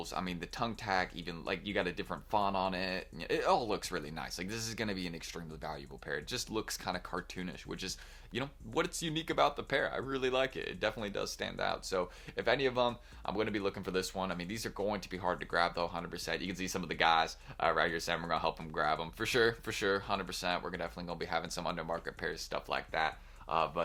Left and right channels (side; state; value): both; identical; correlation 1.00